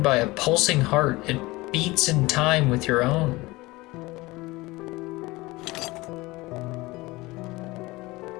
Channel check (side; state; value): right; quieter; 21.2 dB